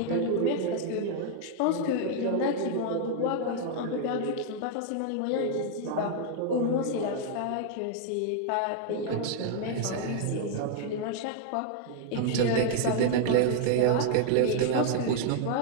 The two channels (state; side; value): different; both; correlation 0.00